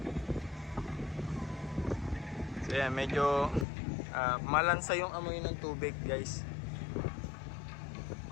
So yan, medyo malansa yung amoy ng tubig guys.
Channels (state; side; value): drops out; right; at 3.7 s